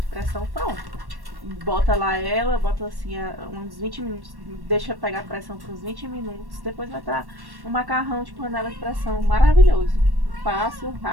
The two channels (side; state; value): left; late; 1.1 ms